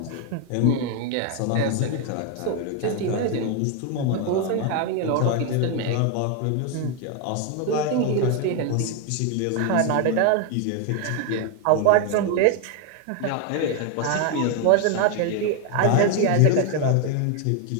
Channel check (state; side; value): different; both; correlation 0.01